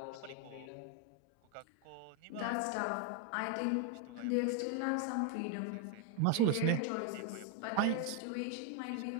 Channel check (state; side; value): different; both; correlation 0.01